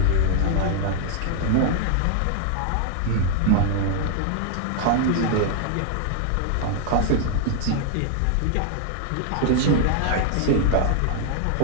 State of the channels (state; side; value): different; both; correlation 0.00